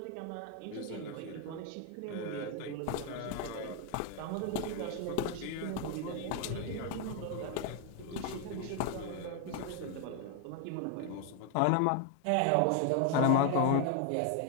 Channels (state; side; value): different; both; correlation 0.01